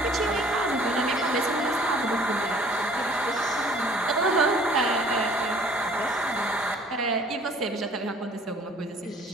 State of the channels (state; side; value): normal; both; correlation 0.53